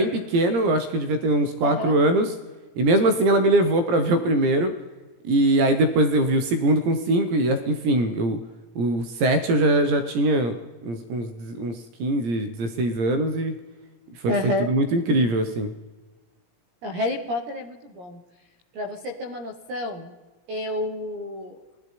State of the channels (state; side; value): late; left; 17 ms